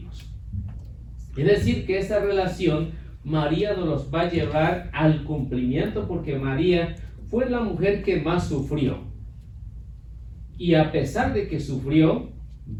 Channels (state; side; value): identical; both; correlation 1.00